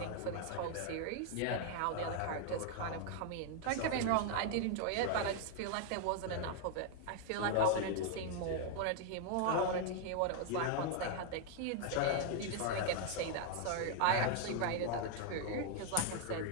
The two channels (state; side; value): different; both; correlation 0.00